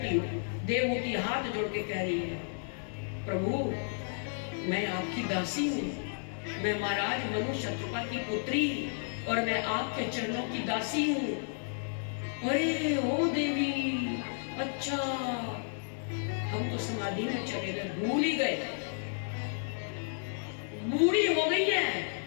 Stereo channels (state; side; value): silent; right; 56 dB below the other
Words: हो? देवहूति हाथ जोड़ के कह रही है, प्रभु मैं आपकी दासी हूँ, मैं महाराज मनु शत्रुपा की पुत्री और मैं आपके चरणों की दासी हूँ। अरे ओ देवी, अच्छा हम तो समाधि में चले गए, भूल ही गए, बूढ़ी हो गई है,